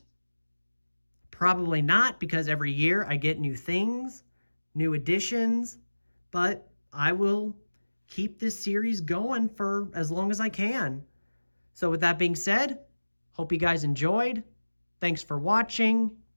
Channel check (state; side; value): inverted; both; correlation -1.00